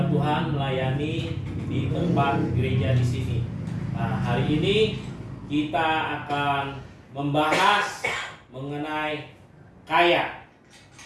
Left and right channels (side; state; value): both; identical; correlation 1.00